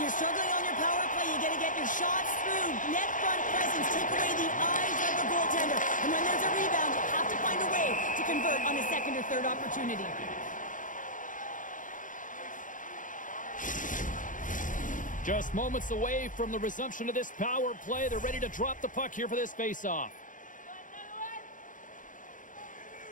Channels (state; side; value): late; right; 0.38 ms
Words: you're struggling on your power play, you got to get your shots through. Net front presence, take away the eyes of the goaltender. And when there's a rebound, you have to find a way to convert on a second or third opportunity. Just moments away from the resumption of this power play. They're ready to drop the puck here for this face-off.